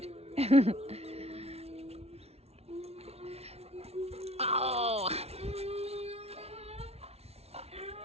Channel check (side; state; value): left; late; 0.30 ms